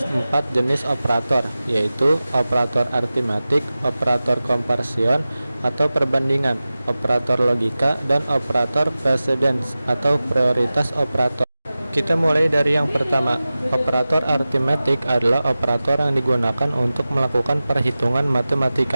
4 jenis operator, yaitu operator aritmatik, operator komparsion atau perbandingan, operator logika, dan operator precedence atau prioritas operator. Kita mulai dari yang pertama. Operator aritmatik adalah operator yang digunakan untuk melakukan perhitungan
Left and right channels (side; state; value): both; inverted; correlation -0.96